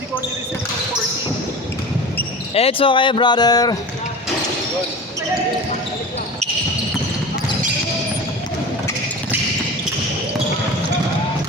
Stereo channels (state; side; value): normal; both; correlation 0.33